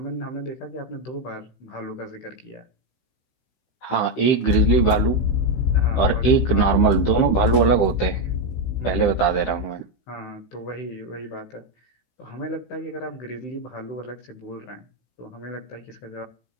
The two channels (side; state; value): right; late; 16 ms